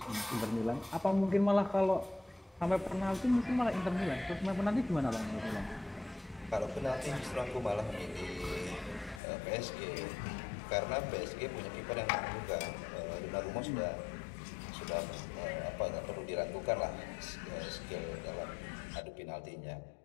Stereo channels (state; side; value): drops out; right; at 9.2 s